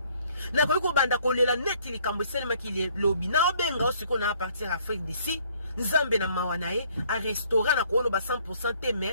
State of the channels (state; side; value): inverted; both; correlation -0.61